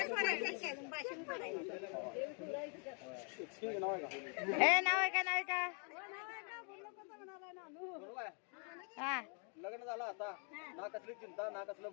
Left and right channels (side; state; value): right; quieter; 39.8 dB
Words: नाव आहे का हे नाव आहे का नाव आहे का बरोबर आहे हा लग्न झालं आता ना कसली चिंता ना कसलं